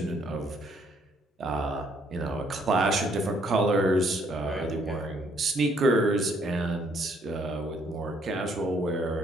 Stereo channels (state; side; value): normal; both; correlation 0.67